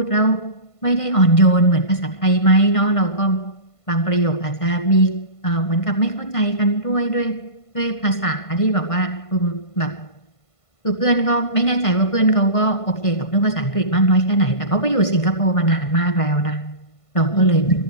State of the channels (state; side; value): late; right; 1.5 ms